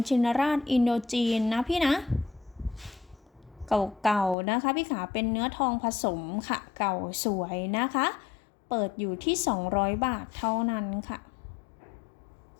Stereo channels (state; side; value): drops out; right; at 4.4 s